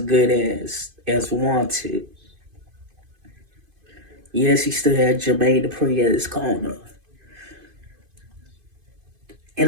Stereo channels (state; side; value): late; left; 2.5 ms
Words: as Wanted. Yes, he still had Jermaine Dupri at his corner,